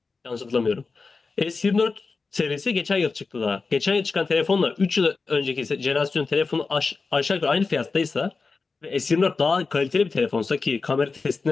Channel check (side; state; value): right; quieter; 4.3 dB